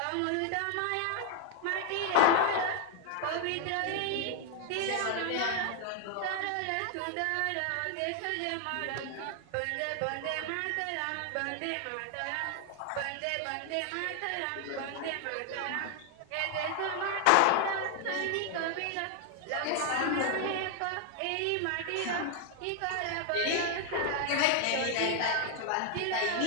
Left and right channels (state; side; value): different; both; correlation 0.00